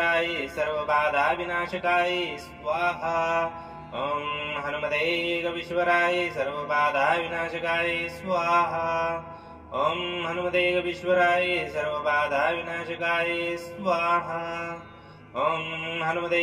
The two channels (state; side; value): identical; both; correlation 1.00